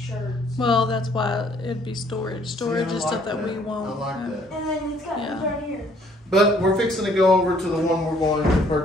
Well, that's why it'd be storage. Storage See, I is like stuff that we won't. I like that. And then it's got Yeah. right here. But we're fixing to go over to the one we're going to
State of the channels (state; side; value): normal; both; correlation 0.63